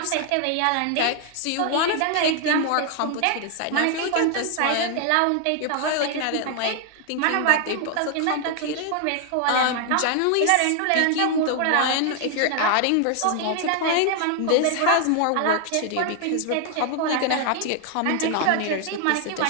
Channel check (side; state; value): both; different; correlation 0.00